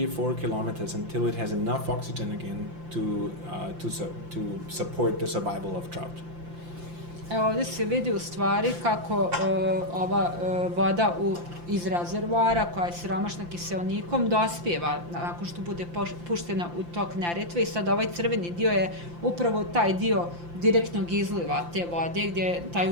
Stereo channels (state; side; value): late; left; 5.8 ms